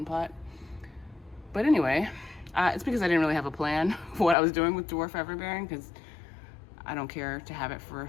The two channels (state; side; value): drops out; right; at 4.4 s